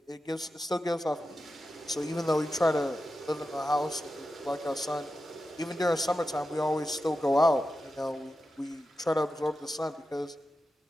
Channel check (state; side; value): normal; both; correlation 0.91